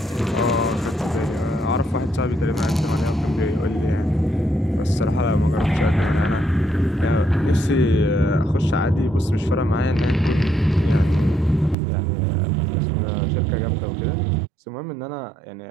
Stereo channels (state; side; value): drops out; left; at 11.8 s